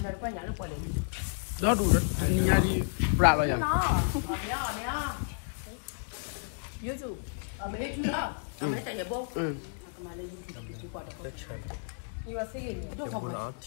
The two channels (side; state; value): right; silent; digital silence